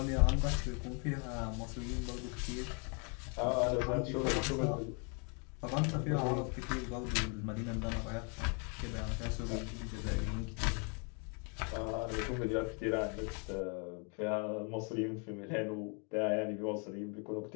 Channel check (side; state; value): right; quieter; 36.8 dB